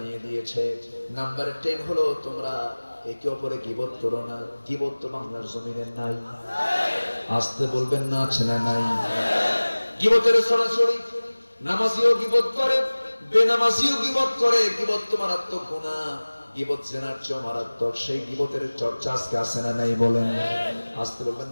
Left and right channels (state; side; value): inverted; both; correlation -1.00